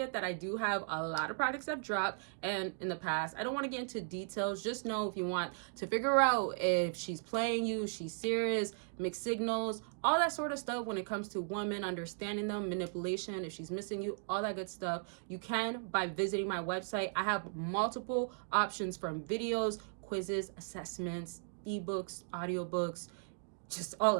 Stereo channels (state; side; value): silent; left; digital silence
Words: that I do have a lot of products I've dropped and in the past. I don't want to get into details. Just know if you want to figure out if she's playing you, she's serious, mixed signals, all that sort of stuff when it comes to women, understanding them, manipulation, if she's missing you, all that good stuff, you can by visiting my website. I have multiple options from videos, quizzes, assessments, ebooks, audiobooks, just all